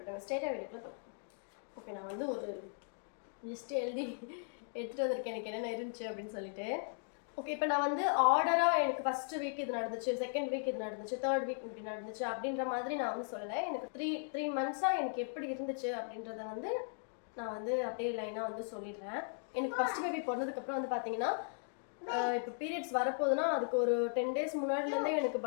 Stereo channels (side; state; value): right; silent; digital silence